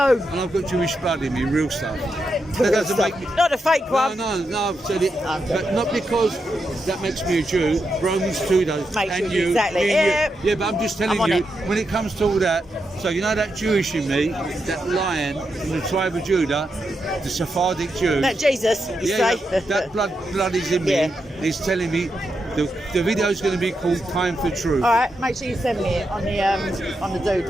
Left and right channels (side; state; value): both; normal; correlation 0.85